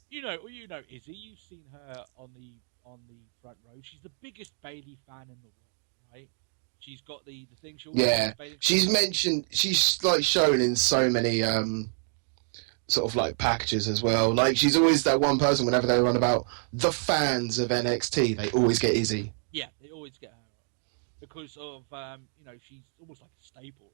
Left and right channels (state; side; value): silent; left; digital silence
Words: You know Izzy. You've seen her on the front row. She's the biggest Bayley fan in the world, right? She's got the thing. She's mentioned. She's like shown in so many sort of like packages as well. Like she's always that one person. Whenever they run about the fans of NXT, they always get Izzy. Yeah, they always get her on because of she's almost like a staple